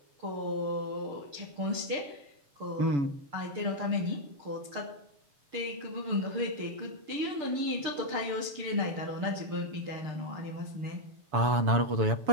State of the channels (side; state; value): left; late; 6.7 ms